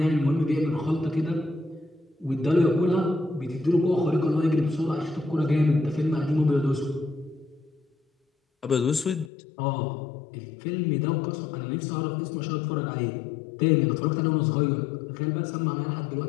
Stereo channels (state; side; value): drops out; right; at 9.3 s